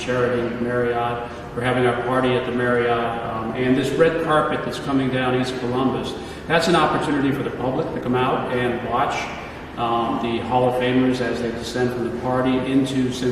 Marriott. We're having our party at the Marriott. And this red carpet that's coming down East Columbus, that's an opportunity for the public to come out and watch the Hall of Famers as they descend from the party into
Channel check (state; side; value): identical; both; correlation 1.00